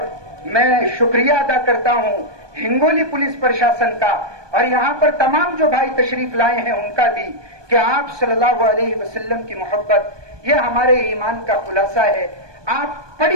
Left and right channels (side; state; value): left; late; 1.2 ms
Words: मैं शुक्रिया अदा करता हूँ हिंगोली पुलिस प्रशासन का, और यहाँ पर तमाम जो भाई तशरीफ लाए हैं उनका भी, कि आप सल्लल्लाहु अलैहि वसल्लम की मोहब्बत ये हमारे ईमान का खुलासा है। आप